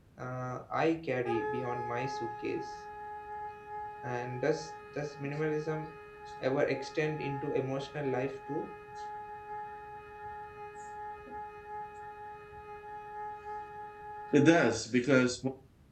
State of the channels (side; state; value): both; identical; correlation 1.00